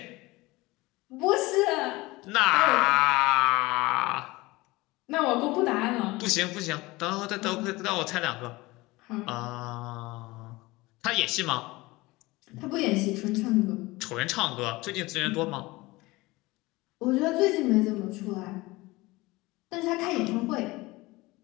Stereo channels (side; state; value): right; quieter; 21.3 dB